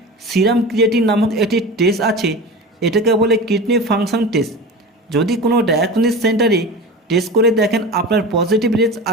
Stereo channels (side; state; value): both; normal; correlation 0.31